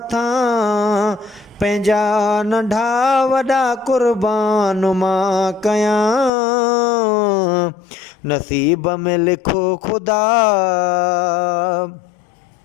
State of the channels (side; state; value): right; drops out; at 6.3 s